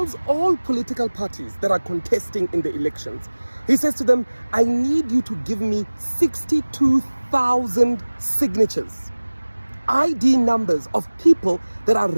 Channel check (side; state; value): both; inverted; correlation -1.00